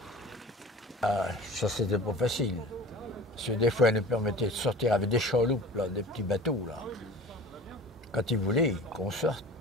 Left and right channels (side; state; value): both; normal; correlation 0.40